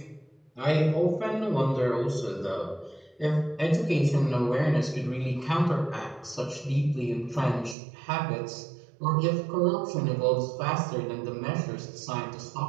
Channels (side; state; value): left; drops out; at 7.8 s